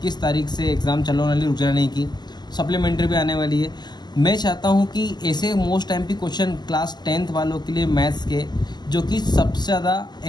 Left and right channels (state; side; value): late; right; 0.21 ms